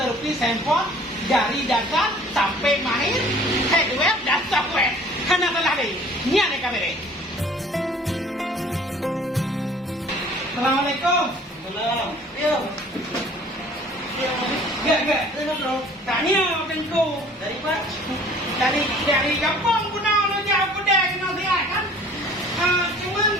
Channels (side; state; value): both; normal; correlation 0.51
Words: handphone dari dasar sampai mahir hardware dan software. Hana telah deh. Nian yang kami deh. Assalamualaikum. Salam. Yo. Gak. Bro. Tanya tengku. Dari Pak. Dari kampung guna lo jauh pedang no dia kan. Cuman